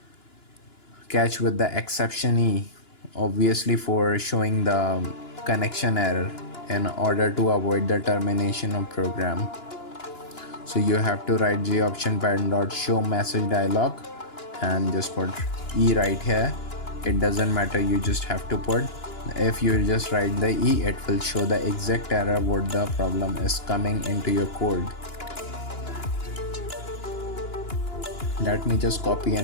catch with the exception E, obviously for showing the connection error in order to avoid the termination of program. So you have to write J option pattern dot show message dialog and just put E right here. It doesn't matter, you just have to put. If you just write the E, it will show the exact error what the problem is coming into your code. Let me just copy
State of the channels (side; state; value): right; late; 2.9 ms